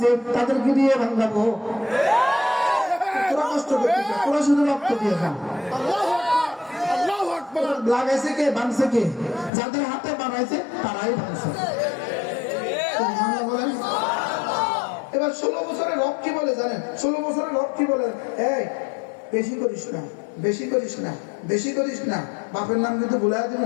তাদের কি দিয়ে ভাঙাবো? তোরা কষ্ট করতেছে, তোরা শুধু রক্ত দিয়ে খান। আল্লাহু আকবার। আল্লাহু আকবার। লাগাইছে কে? ভাঙছে কে? যাদের হাতে বানাইছে তারাই ভাঙছে। সুবহানাল্লাহ বলেন। এবার 16 বছরের রব কি বলে জানেন? 16 বছরের রব কি বলে? এই বেশি করিস না, বেশি করিস না, বেশি করিস না, বাপের নাম কিন্তু ভুলে দিব।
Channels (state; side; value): drops out; right; at 9.5 s